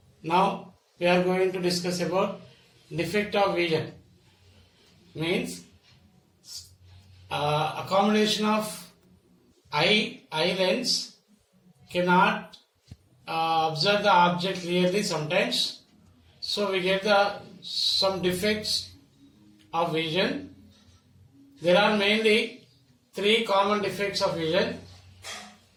Now we are going to discuss about defect of vision. Means accommodation of eye lens cannot observe the object clearly sometimes. So we get some defects of vision. There are mainly three common defects of vision.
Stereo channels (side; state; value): both; identical; correlation 1.00